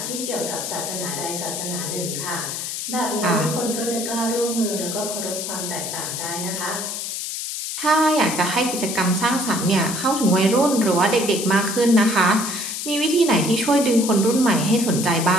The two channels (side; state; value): left; noise; hiss, 5 dB below the sound